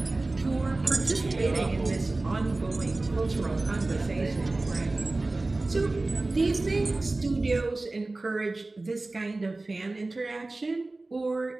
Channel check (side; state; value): left; quieter; 3.1 dB